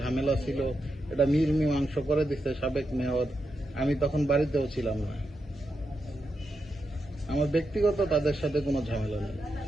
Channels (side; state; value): both; normal; correlation 0.86